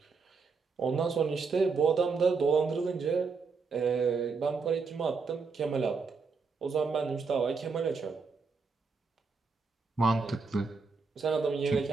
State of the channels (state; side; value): quieter; left; 4.8 dB